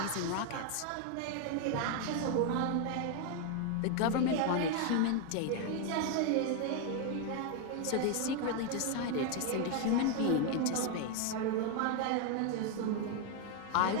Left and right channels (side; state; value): both; different; correlation 0.01